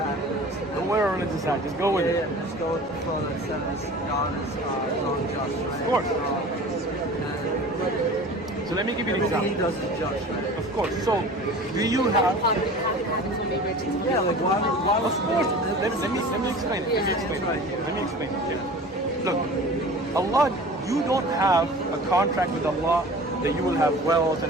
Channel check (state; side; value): normal; both; correlation 0.40